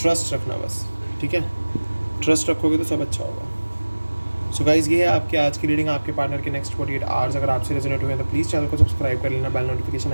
रखना बस, ठीक है, ट्रस्ट रखोगे तो सब अच्छा होगा। सो गाइज़ ये है आपकी आज की रीडिंग आपके पार्टनर के नेक्स्ट 48 आवर्स। अगर आपसे रेजोनेट हुए तो प्लीज़ चैनल को सब्सक्राइब कर लेना, बेल नोटिफिकेशन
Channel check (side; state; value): both; inverted; correlation -1.00